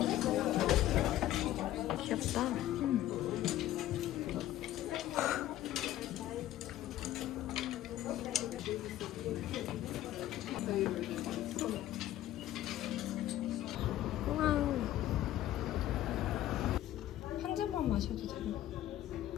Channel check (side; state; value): right; quieter; 13.6 dB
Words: 귀엽다. 우와. 한 잔만 마셔도 되나?